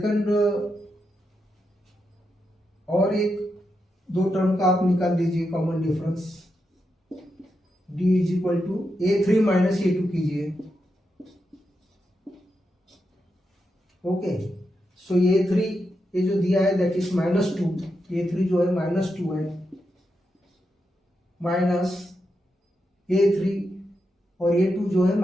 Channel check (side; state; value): both; normal; correlation 0.86